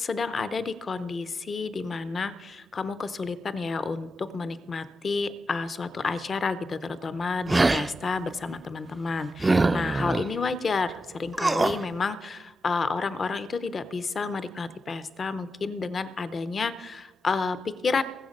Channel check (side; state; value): both; normal; correlation 0.88